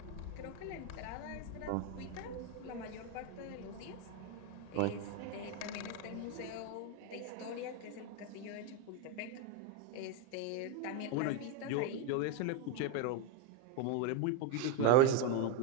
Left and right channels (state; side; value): different; both; correlation 0.02